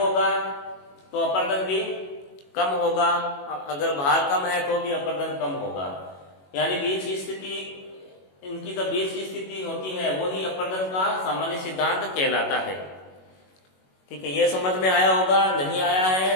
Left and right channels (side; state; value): right; late; 21 ms